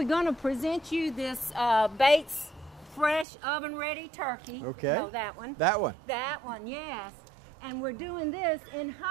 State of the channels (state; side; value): drops out; left; at 3.2 s